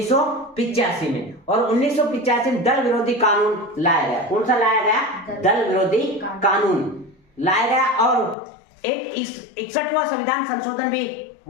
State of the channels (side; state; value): right; drops out; at 8.3 s